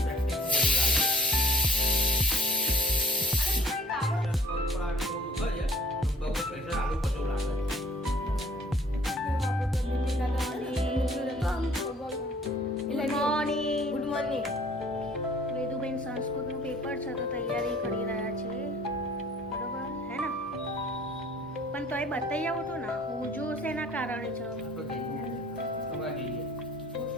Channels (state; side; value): normal; both; correlation 0.54